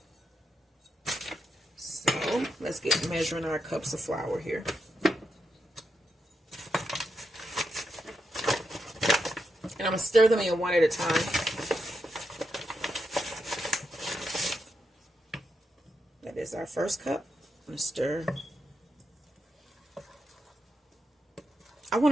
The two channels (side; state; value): both; normal; correlation 0.84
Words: So let's get measuring our cups of flour here. And I'm going to stir them in one at a time. That is our first cup. I'm going to stir. I want